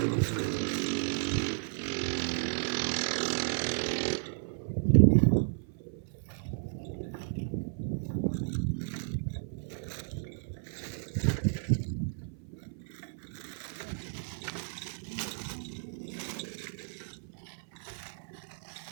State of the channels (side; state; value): left; silent; 55 dB below the other